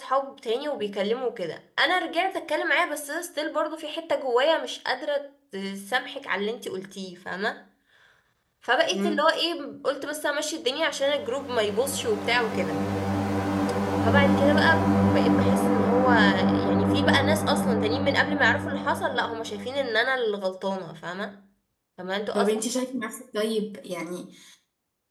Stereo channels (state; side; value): identical; both; correlation 1.00